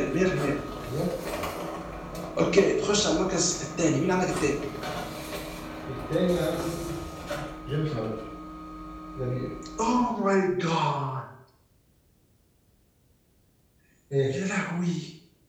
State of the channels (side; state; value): both; identical; correlation 1.00